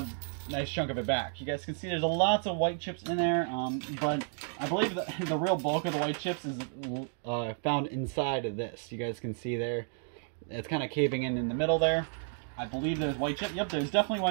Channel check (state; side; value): silent; left; 57 dB below the other